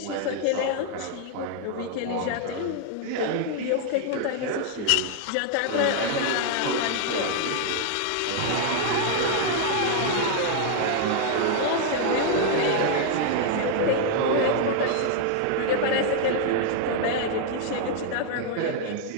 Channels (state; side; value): different; both; correlation 0.00